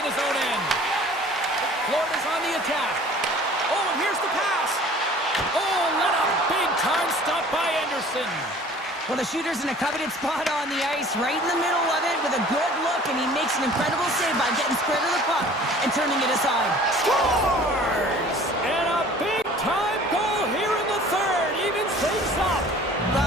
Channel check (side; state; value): both; normal; correlation 0.48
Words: his own end. Florida's on the attack. Oh, and here's the pass. Oh, what a big-time stop by Anderson. Well, the shooter's in a coveted spot on the ice, right in the middle of it with a good look, and he makes an incredible save by getting square to the puck and turning it aside. Scores! And a big-time goal here in the third. Even things up. Well,